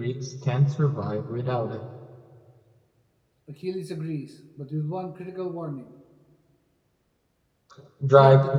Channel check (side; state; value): both; identical; correlation 1.00